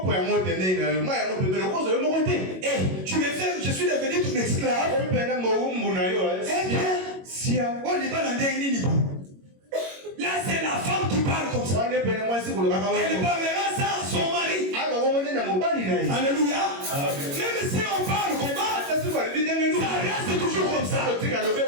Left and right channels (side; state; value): left; late; 22 ms